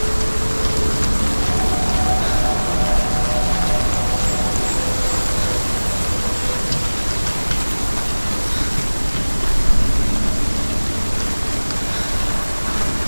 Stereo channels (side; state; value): both; inverted; correlation -1.00